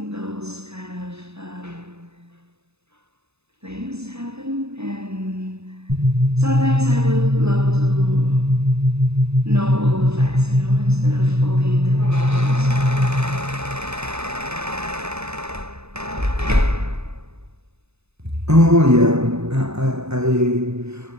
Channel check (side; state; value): left; late; 0.80 ms